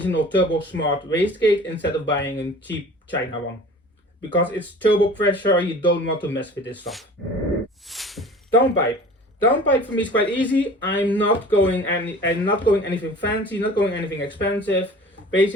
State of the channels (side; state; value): both; normal; correlation 0.43